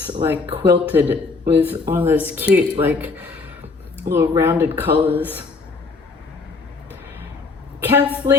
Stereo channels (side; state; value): right; quieter; 4.3 dB